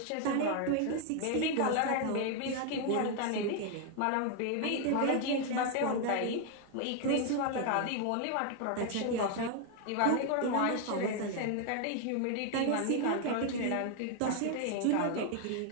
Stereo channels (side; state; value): both; different; correlation 0.01